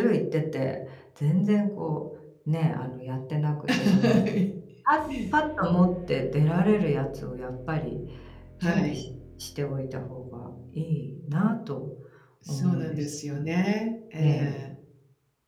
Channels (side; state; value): both; identical; correlation 1.00